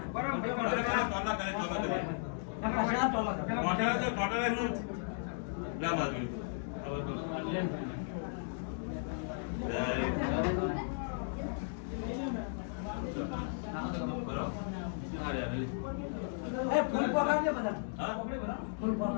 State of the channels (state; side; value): silent; right; digital silence